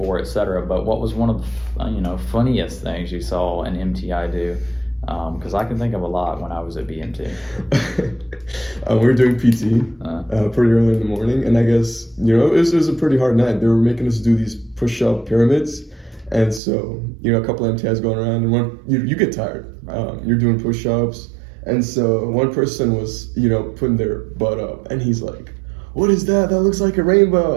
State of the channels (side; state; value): left; drops out; at 16.6 s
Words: etc. But what was one of the funniest things you saw an MTI do? Because I can think of a lot when I was at BMT. We were doing PT pretty early in the morning, and I guess it was a pretty hard night. They were making us do these push-up pyramids, and so a couple of MTIs going around, and you get tired. Right. You're doing push-ups. And so one person was, putting their butt up, and he's like, "What is that? That looks like a